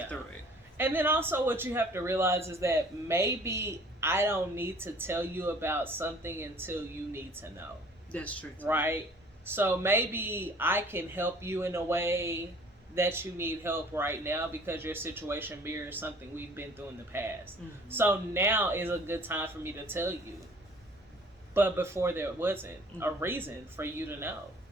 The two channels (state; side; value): normal; both; correlation 0.52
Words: through it. And then also what you have to realize is that maybe I don't need to tell you about something until you need to know. That's true. Right? So maybe I can help you in a way that you need help right now because your situation mirrors something we've been through in the past. Mm-hmm. So now is a good time for me to tell you. But before there wasn't a reason for you to know.